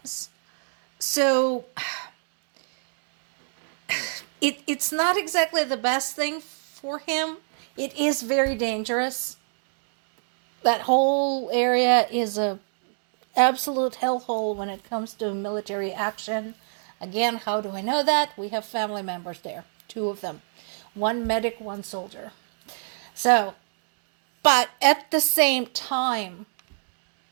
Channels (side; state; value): left; silent; digital silence